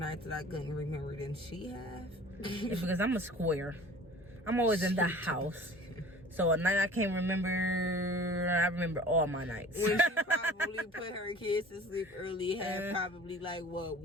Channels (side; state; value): both; normal; correlation 0.45